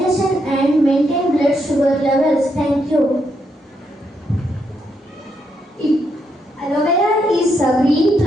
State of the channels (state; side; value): normal; both; correlation 0.78